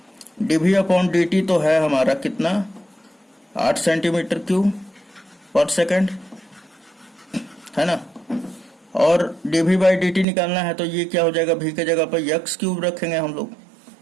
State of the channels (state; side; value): drops out; left; at 10.2 s